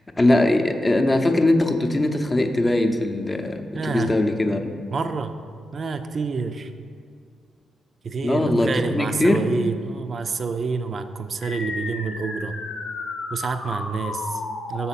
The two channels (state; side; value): normal; both; correlation 0.89